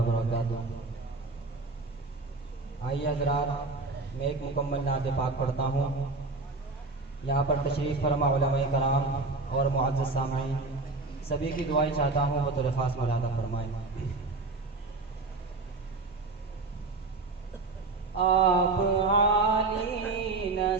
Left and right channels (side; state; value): left; quieter; 3.6 dB